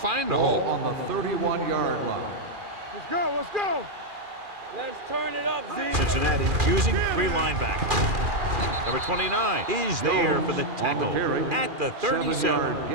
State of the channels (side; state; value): left; late; 2.4 ms